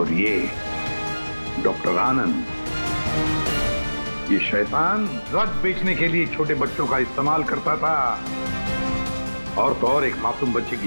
ये डॉक्टर आनंद, ये शैतान ड्रग बेचने के लिए छोटे बच्चों का इस्तेमाल करता था, और तो और एक मासूम बच्चे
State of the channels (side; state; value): both; inverted; correlation -1.00